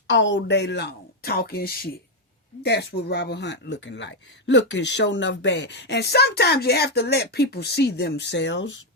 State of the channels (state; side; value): normal; both; correlation 0.03